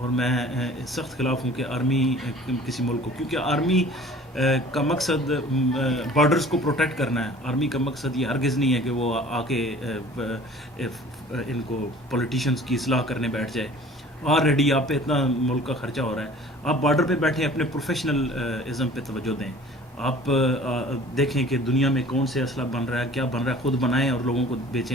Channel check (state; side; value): normal; both; correlation 0.47